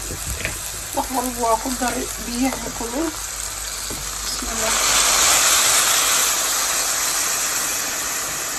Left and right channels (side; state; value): both; identical; correlation 1.00